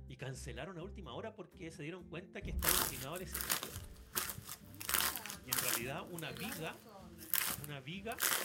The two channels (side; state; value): both; identical; correlation 1.00